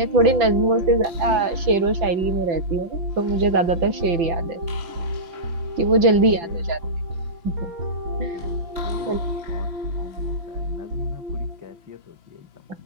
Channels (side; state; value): left; late; 5.9 ms